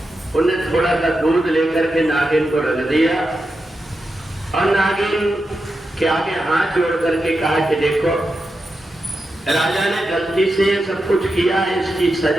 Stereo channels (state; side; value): normal; both; correlation 0.88